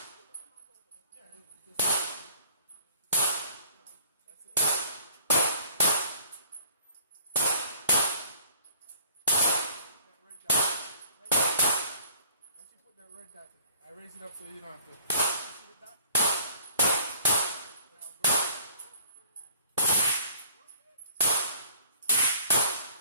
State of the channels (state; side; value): inverted; both; correlation -0.54